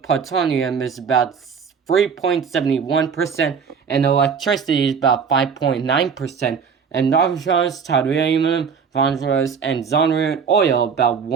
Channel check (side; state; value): left; quieter; 6.4 dB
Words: plutonium is about 3.71%, and electricity is about 5.9%, and nitrogenous, titanium, phosphorus, and zonerium oil about